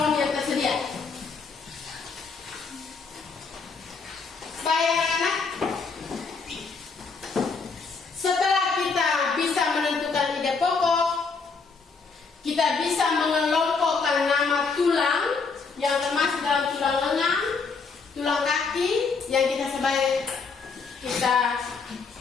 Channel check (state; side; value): quieter; right; 4.8 dB